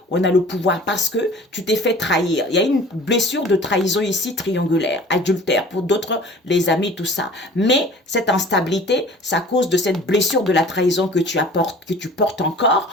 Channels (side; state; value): both; normal; correlation 0.45